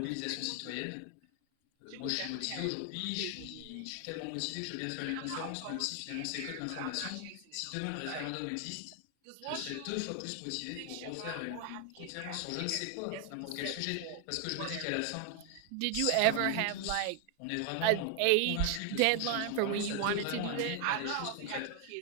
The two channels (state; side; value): different; both; correlation 0.00